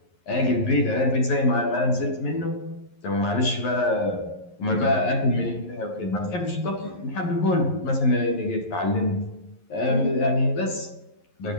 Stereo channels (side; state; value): right; late; 11 ms